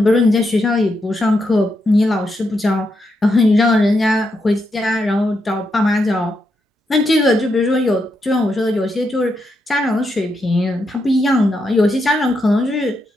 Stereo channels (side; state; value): both; normal; correlation 0.82